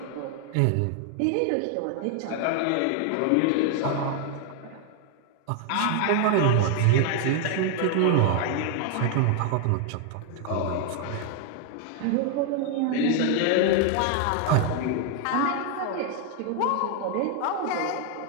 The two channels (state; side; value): different; both; correlation 0.00